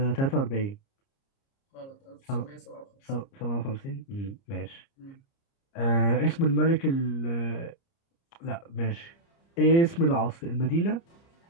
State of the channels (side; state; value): right; late; 30 ms